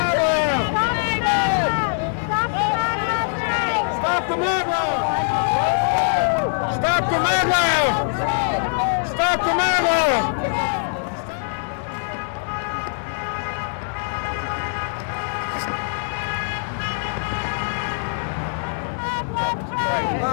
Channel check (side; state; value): right; silent; digital silence